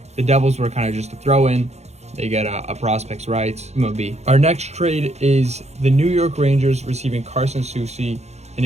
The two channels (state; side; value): late; left; 0.32 ms